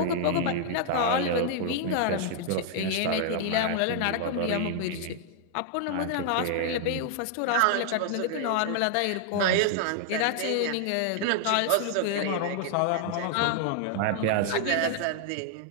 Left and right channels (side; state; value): both; different; correlation -0.01